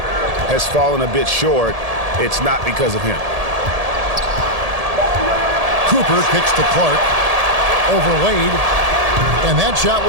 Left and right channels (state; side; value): late; left; 1.7 ms